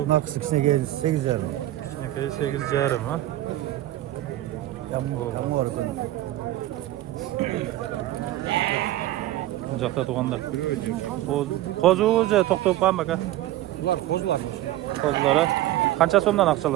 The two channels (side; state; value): left; quieter; 15.0 dB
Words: Maksimine gelir 8 jarım. Kichkinakay 8 jarım, ha? Tam orada. Bu yoqda to'g'anlar. Qo'zi o'zi to'xtab qolgan aka. Bular kozlar. Qo'zlari. Qancha so'mdan